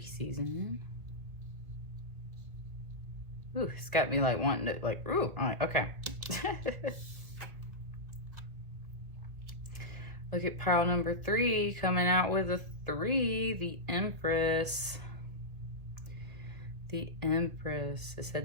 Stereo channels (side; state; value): left; late; 2.0 ms